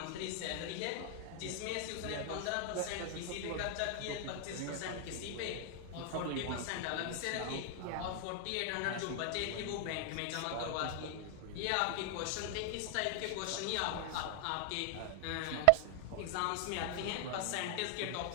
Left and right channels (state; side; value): different; both; correlation 0.00